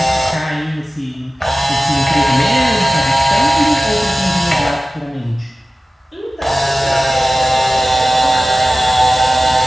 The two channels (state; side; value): normal; both; correlation 0.96